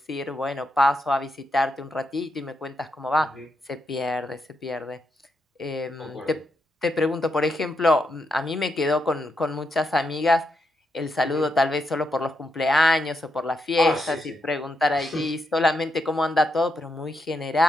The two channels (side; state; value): both; normal; correlation 0.82